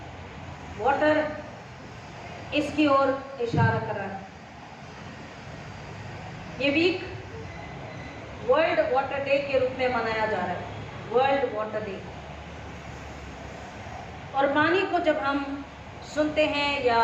वाटर, इसकी ओर इशारा कर रहा है। ये वीक वर्ल्ड वाटर डे के रूप में मनाया जा रहा है, वर्ल्ड वाटर डे। और पानी को जब हम सुनते हैं या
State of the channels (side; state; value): both; identical; correlation 1.00